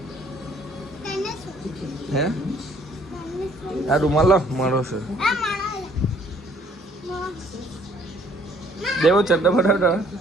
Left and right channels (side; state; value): both; normal; correlation 0.61